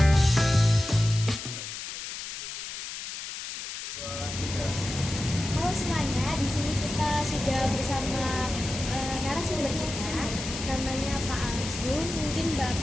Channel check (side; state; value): left; noise; hiss, 8 dB below the sound